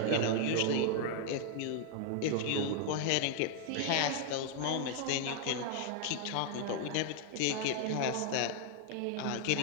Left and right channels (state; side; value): different; both; correlation 0.00